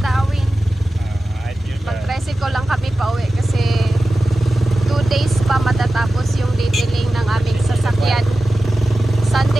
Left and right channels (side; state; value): both; normal; correlation 0.94